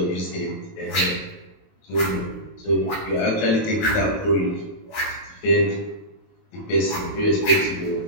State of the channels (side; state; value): right; late; 19 ms